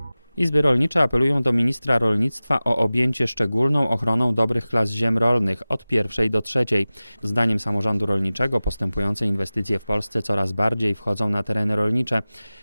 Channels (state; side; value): inverted; both; correlation -0.97